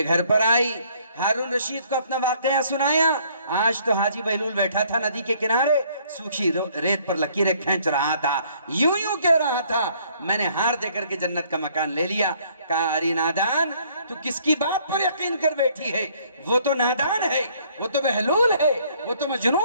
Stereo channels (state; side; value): inverted; both; correlation -0.62